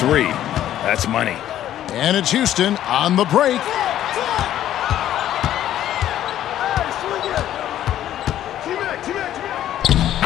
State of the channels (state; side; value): quieter; right; 12.0 dB